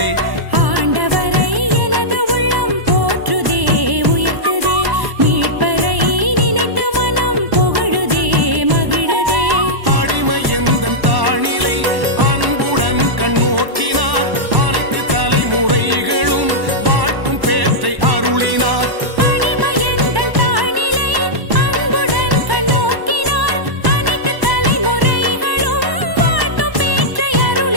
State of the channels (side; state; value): left; late; 1.1 ms